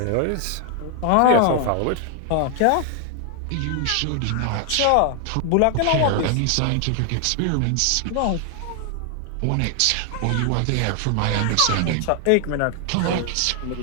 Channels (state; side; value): different; both; correlation 0.00